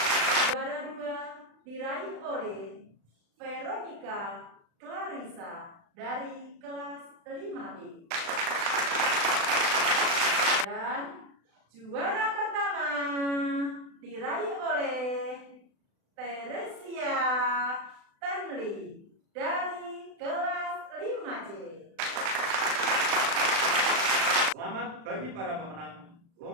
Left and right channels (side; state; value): left; late; 36 ms